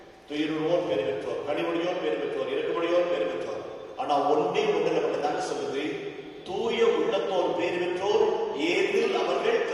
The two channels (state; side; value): identical; both; correlation 1.00